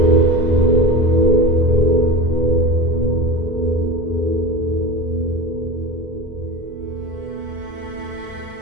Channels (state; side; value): late; left; 2.0 ms